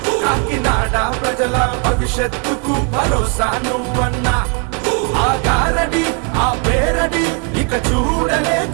కాకినాడ ప్రజల భవిష్యత్తుకు భరోసా నువ్వన్నా. ఆ గారడి ఆ పేరడి ఇక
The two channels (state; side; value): quieter; left; 36.0 dB